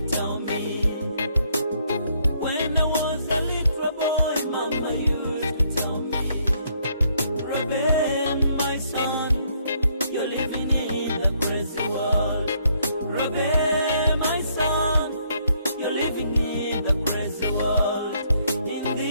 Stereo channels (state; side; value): inverted; both; correlation -0.70